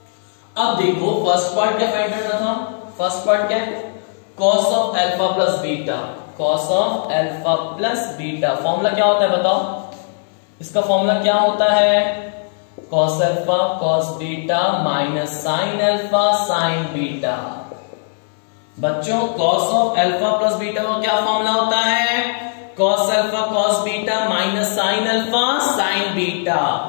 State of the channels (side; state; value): right; silent; 67 dB below the other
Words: अब देखो फर्स्ट पार्ट क्या फाइंड करना था, फर्स्ट पार्ट क्या है, cos of alpha plus beta, cos of alpha plus beta. Formula क्या होता है बताओ, इसका फॉर्मूला क्या होता है, cos alpha cos beta minus sine alpha sine beta. बच्चों cos of alpha plus beta का क्या फॉर्मूला होता है, cos alpha cos beta minus sine alpha sine beta.